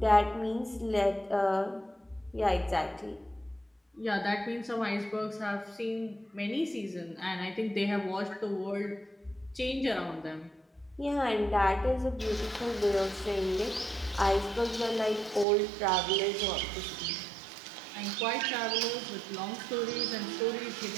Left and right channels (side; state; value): left; drops out; at 15.5 s